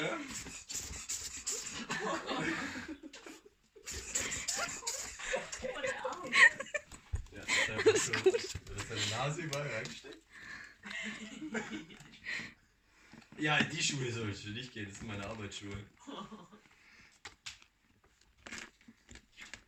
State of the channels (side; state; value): both; identical; correlation 1.00